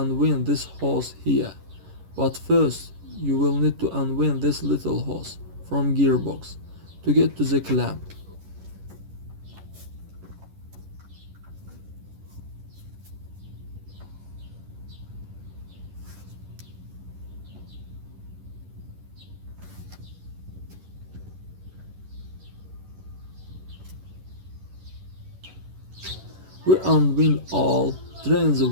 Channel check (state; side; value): late; left; 11 ms